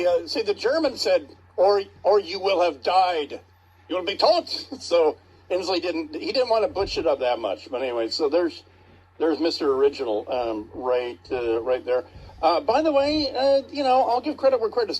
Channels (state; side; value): identical; both; correlation 1.00